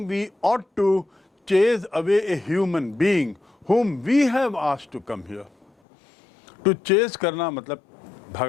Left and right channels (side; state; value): right; drops out; at 5.7 s